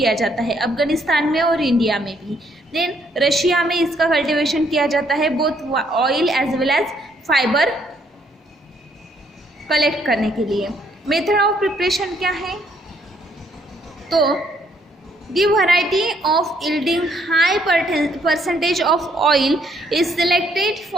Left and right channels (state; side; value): normal; both; correlation 0.69